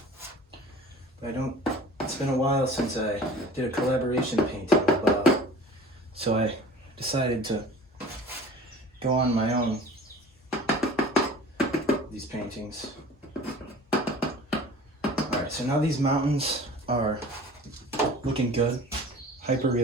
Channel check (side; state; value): both; normal; correlation 0.43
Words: but it's been a while since I did a collaboration painting with Bob, so I decided to go on my own these paintings. Alright, so now these mountains are looking good, hyper